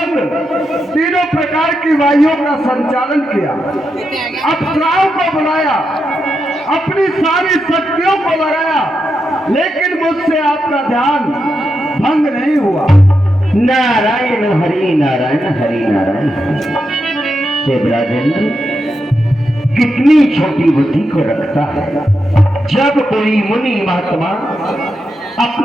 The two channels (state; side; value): normal; both; correlation 0.86